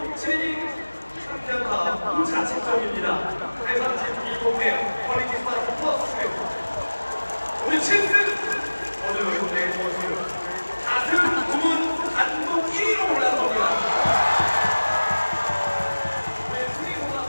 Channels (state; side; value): inverted; both; correlation -1.00